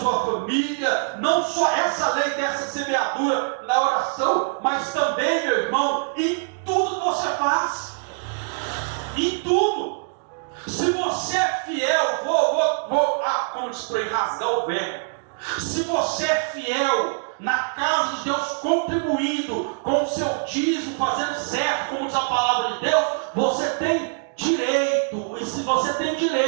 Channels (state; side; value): silent; left; digital silence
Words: família, não só essa lei dessa semeadura na oração, mas também, meu irmão, em tudo que você faz. Em tudo. Se você é fiel, como diz para rasgar o verbo, se você é fiel na casa de Deus, contribuindo com o seu dízimo, fazendo certo, como diz a palavra de Deus, você tem direito, e se você tem